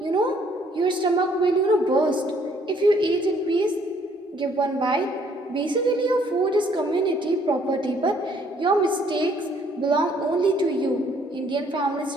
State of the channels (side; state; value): both; normal; correlation 0.63